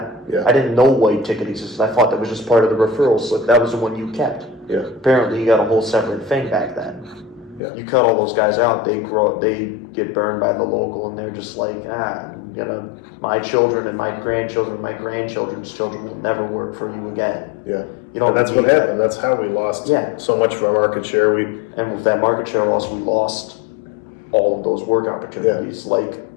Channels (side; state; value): right; drops out; at 7.6 s